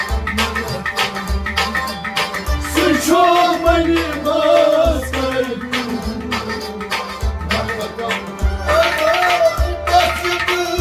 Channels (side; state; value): both; identical; correlation 1.00